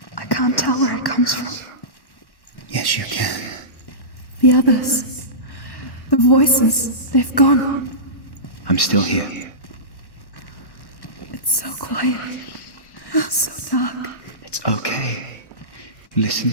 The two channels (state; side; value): late; right; 1.1 ms